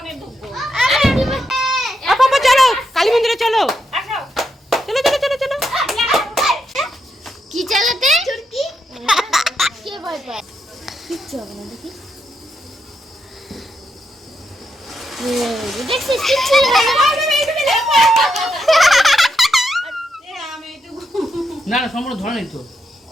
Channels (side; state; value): both; normal; correlation 0.81